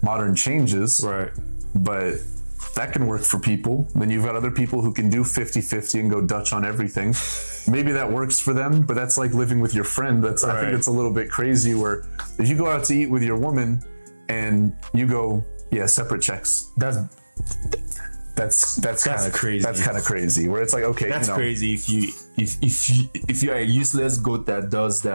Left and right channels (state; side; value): inverted; both; correlation -1.00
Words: modern changes, right? But that can work for people. Then you've got other people who can do 50-50 and go Dutch on everything. Maybe that works for them, but that's like living with your friend. I think it's a little bit crazy, where if you go out to eat with your woman and you go, yeah, separate checks. That's kind of crazy. That's kind of crazy. Where it's like, okay, that's crazy if you're a useless goat that does